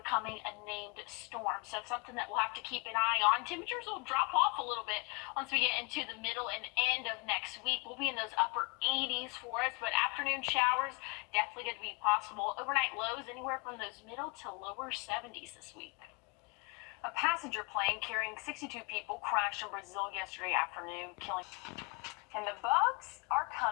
a named storm. So something that we'll have to keep an eye on. Temperatures will drop off a little bit once we get into the middle and end of next week. We'll be in those upper 80s for us, but afternoon showers definitely going to be possible. Overnight lows anywhere from those middle to lower 70s this week. A passenger plane carrying 62 people crashed in Brazil yesterday afternoon, killing. And the bugs are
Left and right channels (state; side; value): quieter; right; 30.8 dB